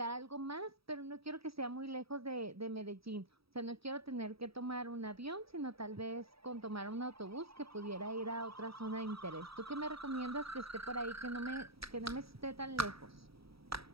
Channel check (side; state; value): left; late; 0.76 ms